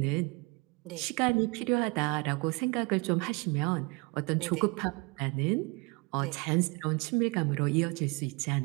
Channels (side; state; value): left; quieter; 28.2 dB